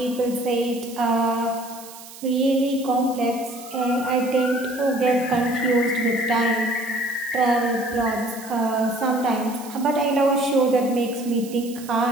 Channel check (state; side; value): noise; right; hiss, 17 dB below the sound